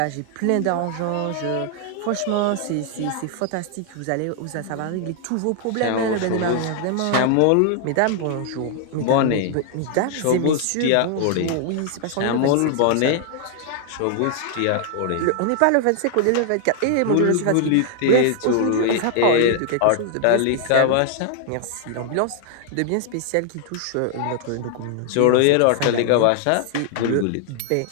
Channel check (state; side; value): different; both; correlation 0.00